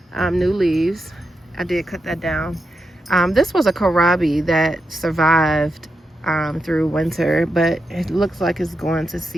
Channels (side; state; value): both; normal; correlation 0.86